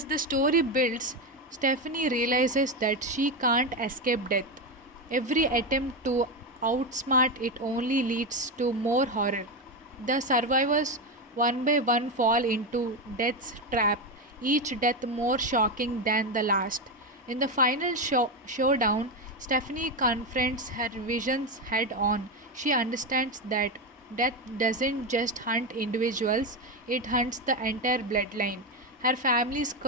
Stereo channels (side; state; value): both; normal; correlation 0.12